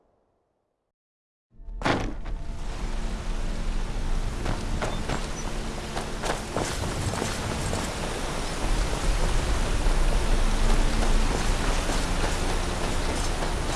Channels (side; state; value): both; identical; correlation 1.00